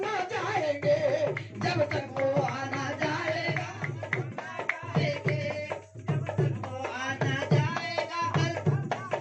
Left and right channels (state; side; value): identical; both; correlation 1.00